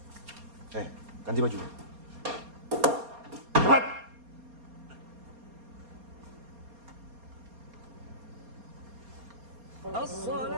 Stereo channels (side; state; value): left; late; 4.2 ms